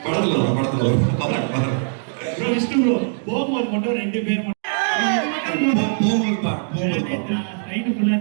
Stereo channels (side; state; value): left; silent; digital silence